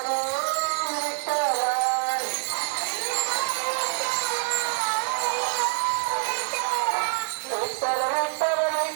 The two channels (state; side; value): silent; left; 56 dB below the other